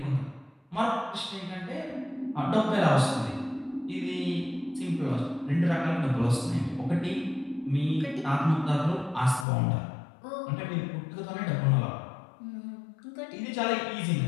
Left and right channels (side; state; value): right; drops out; at 9.5 s